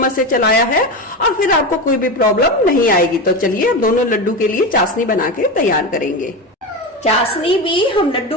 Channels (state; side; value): normal; both; correlation 0.20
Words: से चलाया है और फिर आपको कोई भी प्रॉब्लम नहीं आएगी। तो चलिए अब दोनों लड्डू के लिए चाशनी बना के तैयार करेंगे। चाशनी भी हम